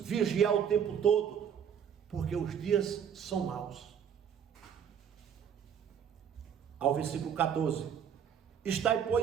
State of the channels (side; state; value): left; quieter; 8.2 dB